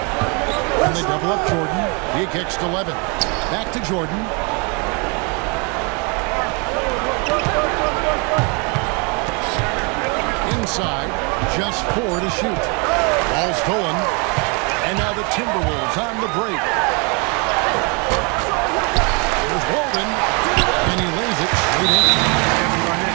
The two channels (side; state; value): left; quieter; 32.5 dB